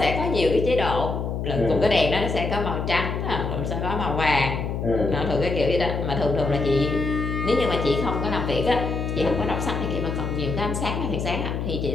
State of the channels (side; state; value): left; noise; hum, 3 dB below the sound